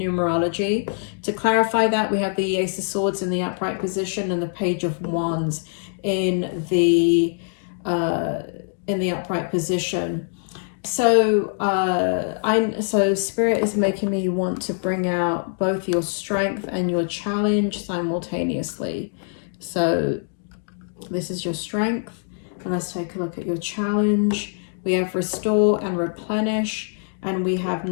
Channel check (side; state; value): right; silent; digital silence